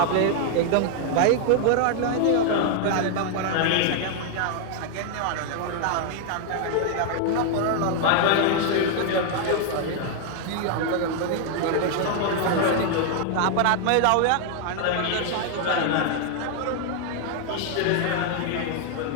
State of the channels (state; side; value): different; both; correlation 0.00